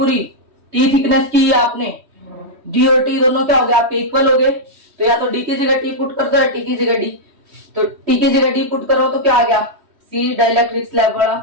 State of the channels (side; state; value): left; late; 3.1 ms